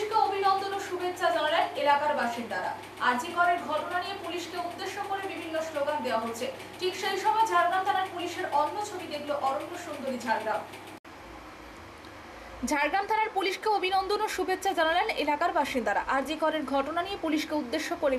অভিনন্দন ও শুভেচ্ছা জানালেন এলাকার বাসিন্দারা। আরজিকরের ঘটনা নিয়ে পুলিশকে উদ্দেশ্য করে বিভিন্ন স্লোগান দেওয়া হচ্ছে। ঠিক সেই সময় ঝাড়গ্রাম থানার পুলিশের অন্য ছবি দেখল অরণ্য সুন্দরী ঝাড়গ্রাম। ঝাড়গ্রাম থানার পুলিশকে অভিনন্দন ও শুভেচ্ছা জানালেন এলাকার বাসিন্দারা। আরজিকরের ঘটনা নিয়ে পুলিশকে উদ্দেশ্য করে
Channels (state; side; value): identical; both; correlation 1.00